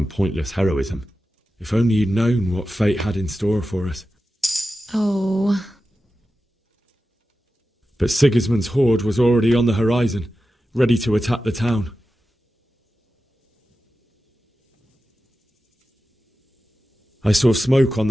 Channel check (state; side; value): normal; both; correlation 0.93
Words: pointless heroism. If only you'd known what fate had in store for us. Oh. But Sigismund's horde was already on the horizon, ready to attack the town. I saw smoke on